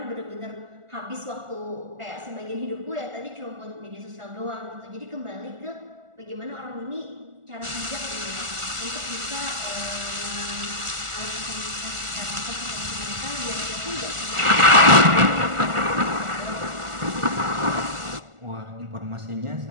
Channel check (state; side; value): late; left; 1.4 ms